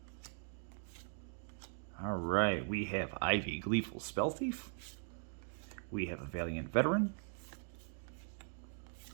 All right, we have Ivy, Gleeful Spell Thief. We have a Valiant Veteran.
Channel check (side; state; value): left; silent; digital silence